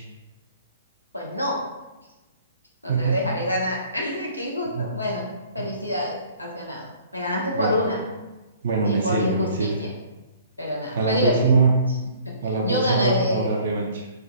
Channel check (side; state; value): both; inverted; correlation -0.54